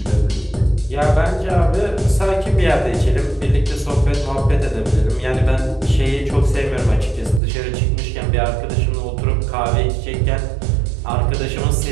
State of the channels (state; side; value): drops out; left; at 7.4 s